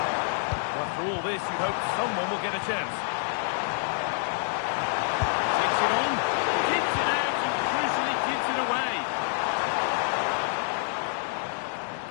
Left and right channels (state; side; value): silent; right; digital silence